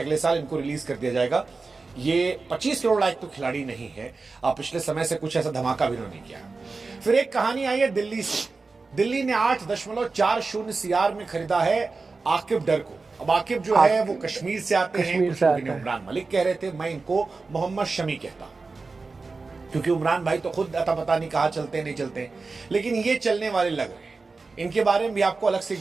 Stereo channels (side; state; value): left; quieter; 4.0 dB